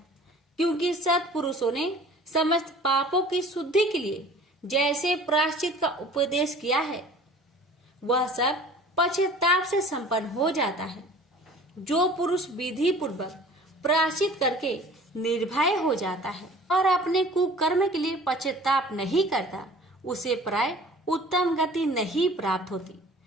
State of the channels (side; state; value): both; normal; correlation 0.47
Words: क्योंकि सत्पुरुषों ने समस्त पापों की शुद्धि के लिए जैसे प्रायश्चित का उपदेश किया है, वह सब पश्चाताप से संपन्न हो जाता है। जो पुरुष विधि पूर्वक प्रायश्चित करके निर्भय हो जाता है और अपने कुकर्म के लिए पश्चाताप नहीं करता, उसे प्राय उत्तम गति नहीं प्राप्त होती।